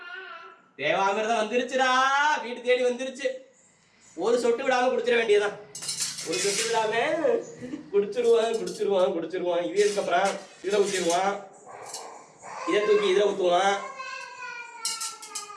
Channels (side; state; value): both; identical; correlation 1.00